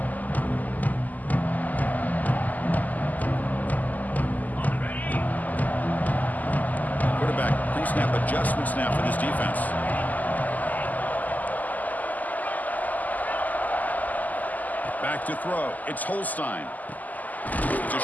Quarterback pre-snap adjustment snap for this defense. Back to throw. It's Holstein. It's a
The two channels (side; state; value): right; late; 0.080 ms